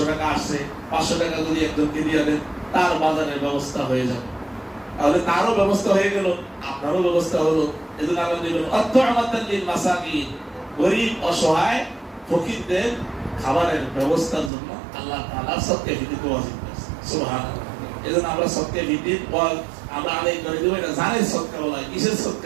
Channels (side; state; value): left; drops out; at 14.5 s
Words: টাকা আসছে, 500 টাকা যদি একজনকে দিয়ে দেন, তার বাজারের ব্যবস্থা হয়ে যাবে, তাহলে তারও ব্যবস্থা হয়ে গেল, আপনারও ব্যবস্থা হলো। এজন্য আল্লাহ বলেন অত্তআমাতাল লিল মাসাকিন, গরীব অসহায় ফকিরদের খাবারের ব্যবস্থার জন্য আল্লাহ তাআলা সদকায়ে ফিতর ওয়াজিব করেছেন। সুবহানাল্লাহ। এজন্য আমরা সদকায়ে ফিতর আমরা আদায় করে দেব। এটা জানের সদকা বলা হয়। কিসের